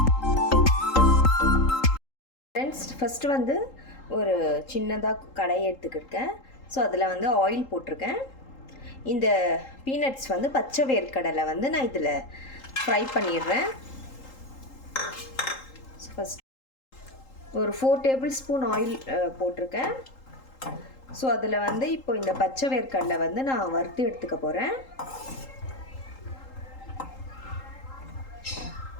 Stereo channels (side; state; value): right; late; 3.8 ms